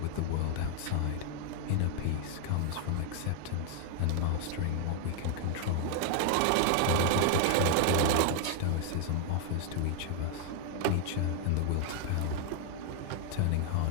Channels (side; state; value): both; different; correlation 0.00